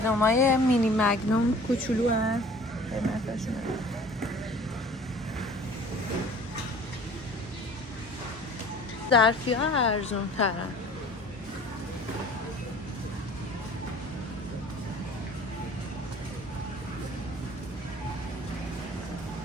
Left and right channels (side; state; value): both; normal; correlation 0.47